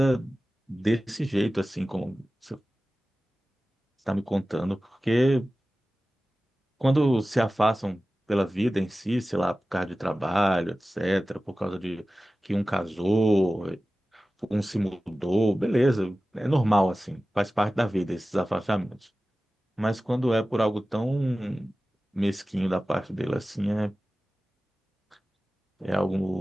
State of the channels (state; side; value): normal; both; correlation 0.96